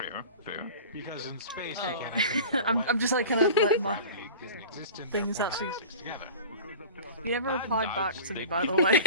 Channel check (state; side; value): inverted; both; correlation -0.37